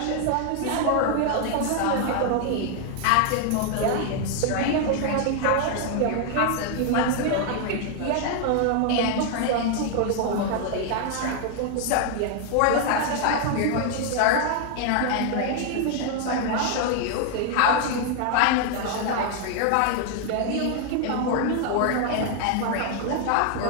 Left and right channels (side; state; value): both; different; correlation 0.00